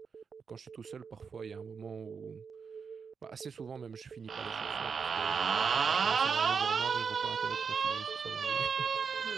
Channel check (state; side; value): quieter; left; 5.9 dB